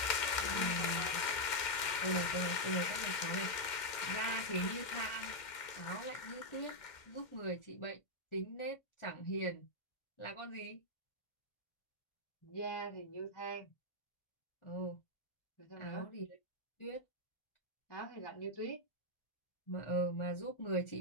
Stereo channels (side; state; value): right; late; 2.1 ms